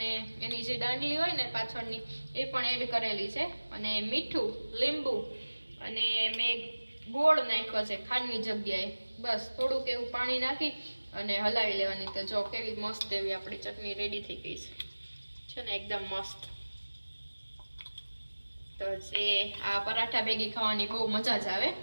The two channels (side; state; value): both; inverted; correlation -1.00